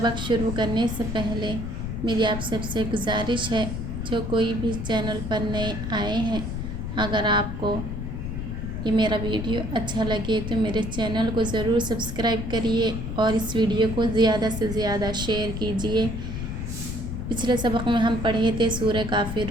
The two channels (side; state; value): left; noise; rumble, 5 dB below the sound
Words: शुरू करने से पहले मेरी आप सबसे गुजारिश है, जो कोई भी चैनल पर नए आए हैं, अगर आपको ये मेरा वीडियो अच्छा लगे तो मेरे चैनल को ज़रूर सब्सक्राइब करिए और इस वीडियो को ज़्यादा से ज़्यादा शेयर कीजिए। पिछले सबक में हम पढ़े थे सूरह